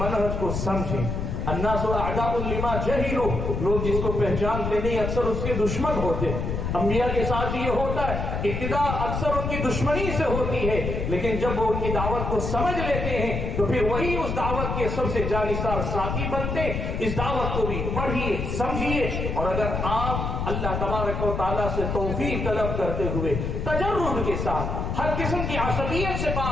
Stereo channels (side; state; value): left; noise; rumble, 2 dB below the sound